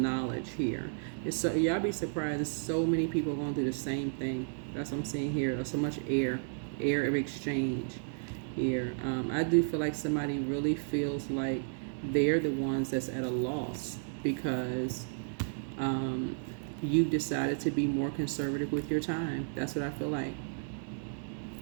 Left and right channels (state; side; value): silent; left; digital silence